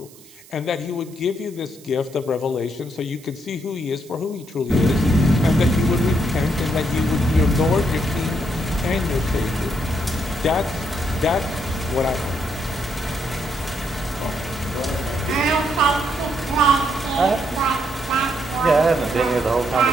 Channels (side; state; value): right; noise; hiss, 23 dB below the sound